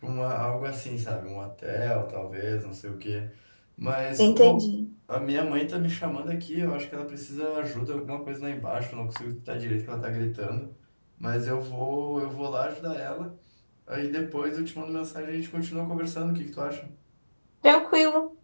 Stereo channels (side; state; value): both; inverted; correlation -1.00